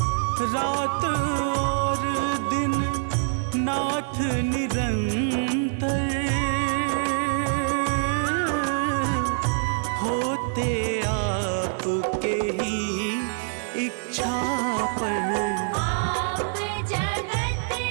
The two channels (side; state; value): left; silent; 56 dB below the other